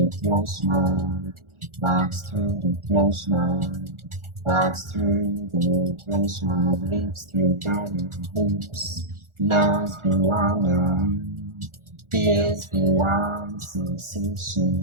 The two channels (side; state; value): left; late; 1.4 ms